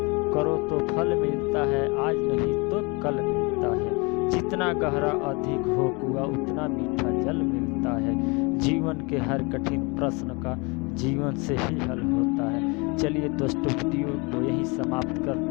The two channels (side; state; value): right; quieter; 28.8 dB